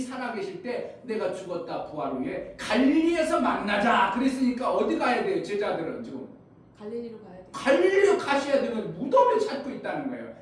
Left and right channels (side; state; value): both; identical; correlation 1.00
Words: 때 내가 죽었다 부활 후에 갈릴리에서 만나자 그랬으니까 어디 가야 돼요? 제자들은 지금 갈릴리로 가야 돼. 갈릴리로 가셔야 되면 무덤을 찾고 있다는 거예요.